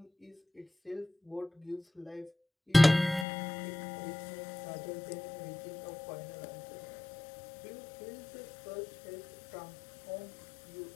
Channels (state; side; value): drops out; right; at 3.2 s